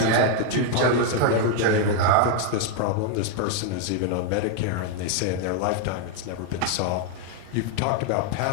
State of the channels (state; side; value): different; both; correlation 0.00